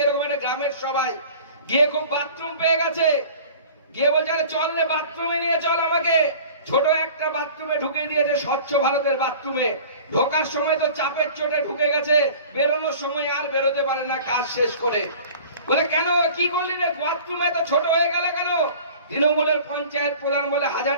এরকম একটা গ্রামের সবাই গিয়ে খুব বাথরুম পেয়ে গেছে, গিয়ে বলছে আরে চল রে বাথরুমে নিয়ে চল আমাকে। ছোট একটা বাথরুমে ঢুকে দিয়েছে, স্বচ্ছ ভারতের বাথরুমে। ঢোকার সময় তো চাপের চোটে ঢুকে গেছে, বেরোনোর সময় আর বেরোতে পারে না কাজ শেষ করে। বলে কেন, কি করলি রে, বাথরুমে তো ছোট হয়ে গেল কেন? তৃণমূলের পঞ্চায়েত প্রধান বলে 1000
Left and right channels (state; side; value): inverted; both; correlation -0.43